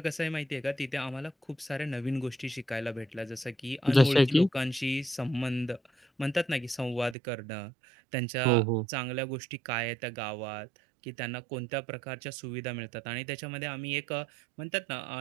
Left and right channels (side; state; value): left; drops out; at 7.2 s